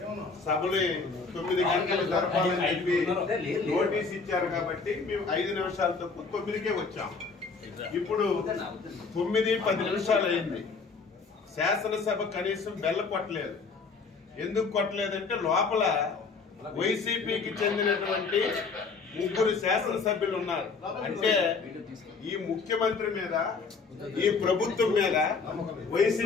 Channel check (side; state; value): right; quieter; 4.6 dB